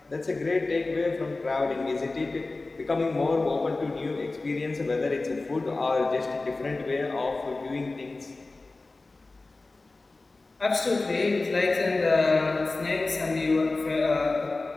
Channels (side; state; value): right; quieter; 3.3 dB